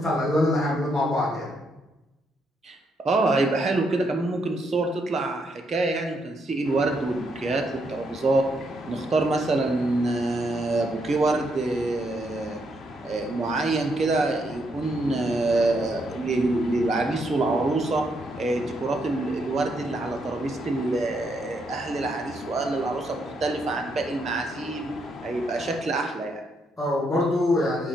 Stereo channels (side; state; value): both; normal; correlation 0.77